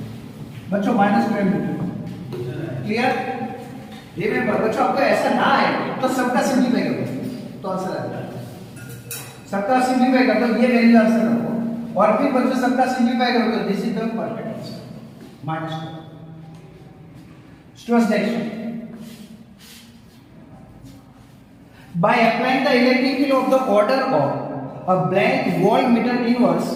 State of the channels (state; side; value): identical; both; correlation 1.00